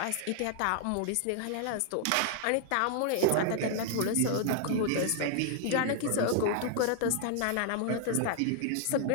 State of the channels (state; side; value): different; both; correlation 0.00